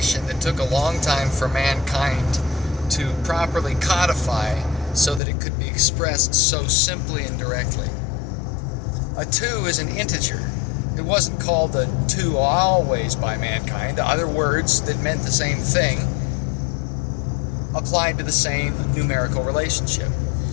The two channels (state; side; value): drops out; right; at 5.2 s